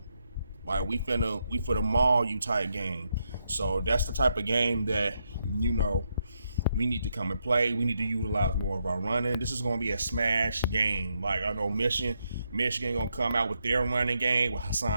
like we finna maul you type game. So that's the type of game that we need to come and play. We need to utilize more of our running. This is going to be a smash game. Like, I know Michigan going to come out with their running game with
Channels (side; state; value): both; inverted; correlation -0.80